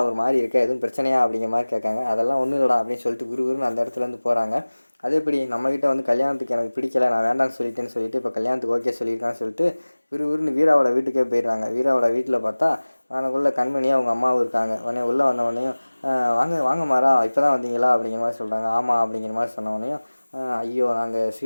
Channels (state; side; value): inverted; both; correlation -1.00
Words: ஒரு மாதிரி இருக்க, எதுவும் பிரச்சனையா அப்படிங்கிற மாதிரி கேட்காங்க. அதெல்லாம் ஒன்றும் இல்லைடா அப்படின்னு சொல்லிட்டு குருன்னு அந்த இடத்துலேருந்து போகிறாங்க. அது எப்படி நம்மக்கிட்ட வந்து கல்யாணத்துக்கு எனக்கு பிடிக்கல, நான் வேண்டாம்னு சொல்லிட்டேன்னு சொல்லிட்டு இப்போ கல்யாணத்துக்கு ஓகே சொல்லியிருக்கான்னு சொல்லிட்டு விறுவிறுன்னு வீராவோட வீட்டுக்கே போயிடுறாங்க. வீராவோட வீட்டில் பார்த்தா அவனுக்குள்ள கண்மணியாக அவங்க அம்மாவும் இருக்காங்க. உடனே உள்ளே வந்தவொடனையும், வாங்க மாறா இப்போ தான் வந்தீங்களா அப்படிங்கிற மாதிரி சொல்கிறாங்க. ஆமாம் அப்படிங்கிற மாதிரி சொன்னவொடனையும், ஐயோ நாங்கள்